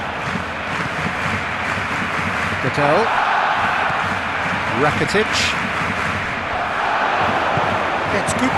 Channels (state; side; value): noise; left; hum, 26 dB below the sound